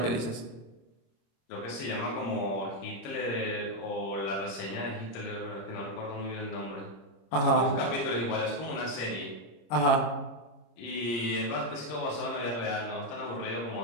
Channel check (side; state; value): right; late; 25 ms